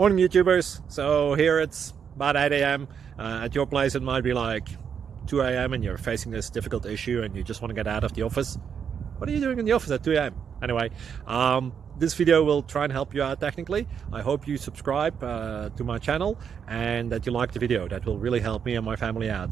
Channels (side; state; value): left; quieter; 7.3 dB